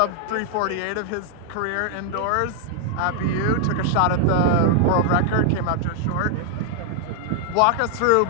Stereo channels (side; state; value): both; different; correlation 0.00